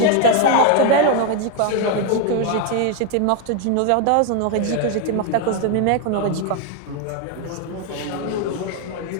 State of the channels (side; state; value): both; different; correlation 0.01